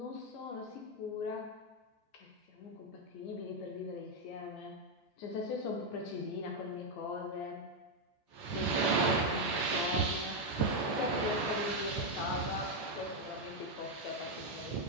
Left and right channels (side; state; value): right; late; 14 ms